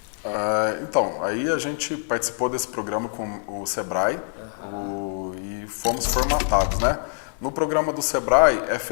Então, aí a gente participou desse programa com o Sebrae e fomos formatados, né? No programa do Sebrae é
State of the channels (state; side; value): silent; right; 62 dB below the other